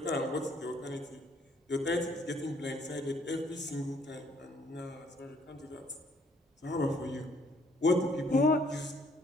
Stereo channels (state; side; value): normal; both; correlation 0.64